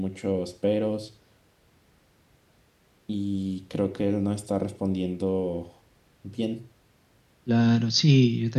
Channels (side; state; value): both; identical; correlation 1.00